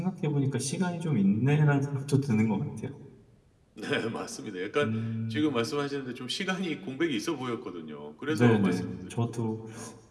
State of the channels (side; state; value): both; identical; correlation 1.00